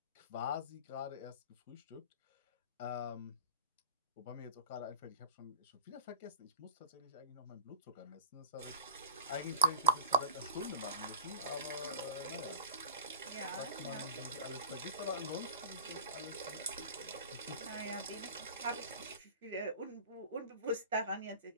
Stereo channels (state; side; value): inverted; both; correlation -0.38